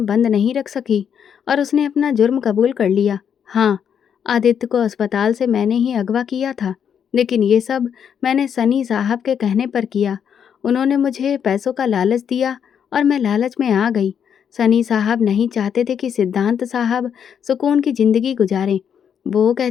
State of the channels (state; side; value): quieter; right; 8.0 dB